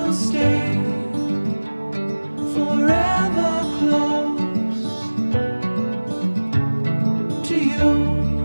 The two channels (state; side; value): inverted; both; correlation -1.00